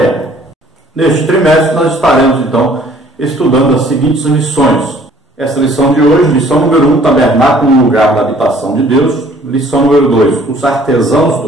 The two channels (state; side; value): normal; both; correlation 0.57